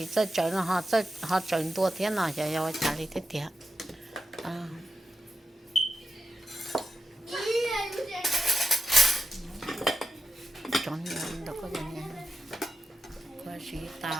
这整họ整多天了要家里的点啊整年的个人我是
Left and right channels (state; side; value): normal; both; correlation 0.88